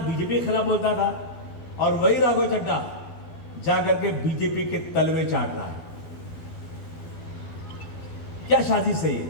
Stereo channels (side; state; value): right; late; 12 ms